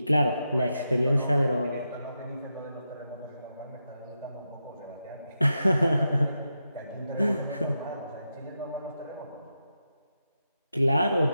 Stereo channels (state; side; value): inverted; both; correlation -0.87